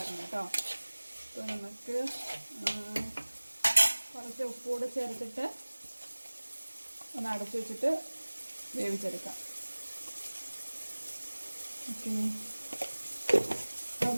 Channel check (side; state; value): both; inverted; correlation -1.00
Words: കേട്ടോ. അപ്പോൾ നമുക്ക് കുറച്ച് ഉപ്പുകൂടെ ചേർത്തിട്ട് ഒന്ന് അടച്ചു വെച്ചിട്ട് വേവിച്ചെടുക്കാം. ഓക്കെ,